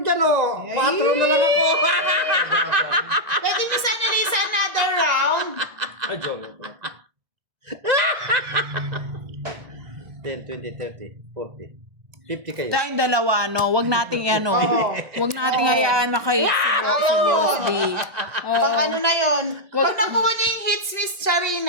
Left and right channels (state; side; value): late; left; 1.9 ms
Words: oh? Ay. 4 na lang ako. Pwede niyo sana Lisa another round. Ay, joke lang pala. 10, 20, 30, 40. 50 kayo. Tayong dalawa, no? Huwag nating ano. Oo. Huwag nating hayaan makahit si Ayaw yun. Boss D. Oo. Pang ano na yun. Pag nakuha niya yung hits, Miss